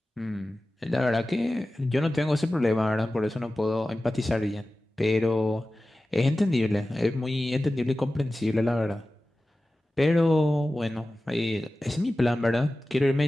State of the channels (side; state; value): both; normal; correlation 0.95